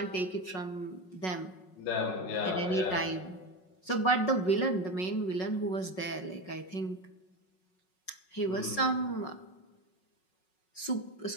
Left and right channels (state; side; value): late; right; 5.4 ms